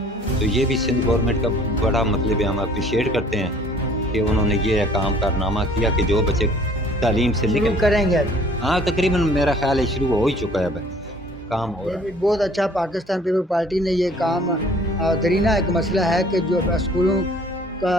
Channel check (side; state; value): both; normal; correlation 0.54